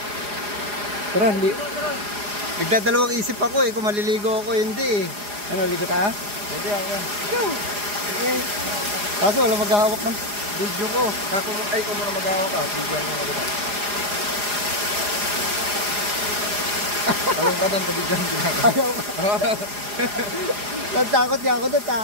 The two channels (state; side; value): late; left; 4.9 ms